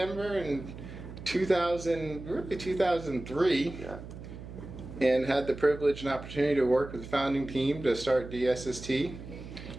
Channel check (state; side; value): noise; right; hum, 12 dB below the sound